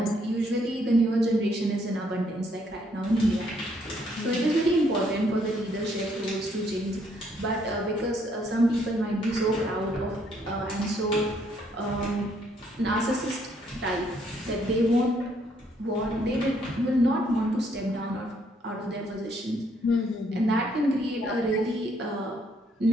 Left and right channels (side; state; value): both; normal; correlation 0.69